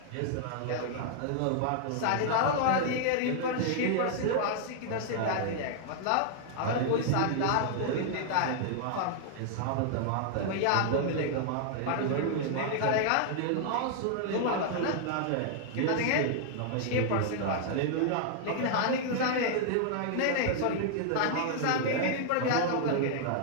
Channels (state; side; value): different; both; correlation 0.00